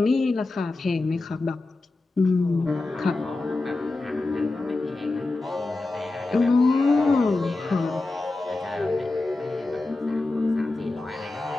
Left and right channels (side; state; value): right; quieter; 3.2 dB